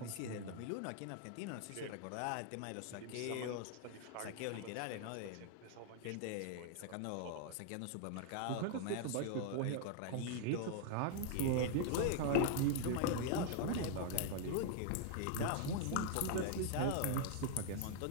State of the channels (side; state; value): both; different; correlation 0.00